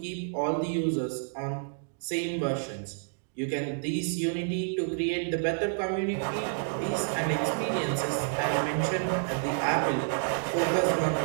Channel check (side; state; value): left; silent; digital silence